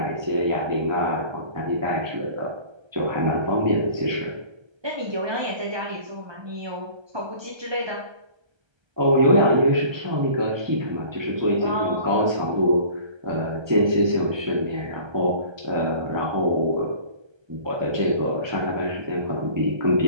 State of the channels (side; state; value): left; late; 1.3 ms